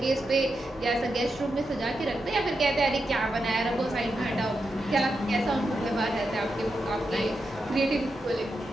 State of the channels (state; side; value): normal; both; correlation 0.87